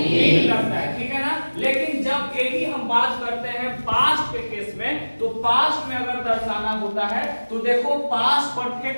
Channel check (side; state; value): both; inverted; correlation -1.00